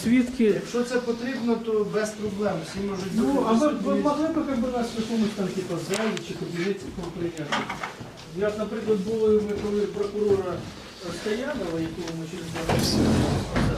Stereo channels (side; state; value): both; identical; correlation 1.00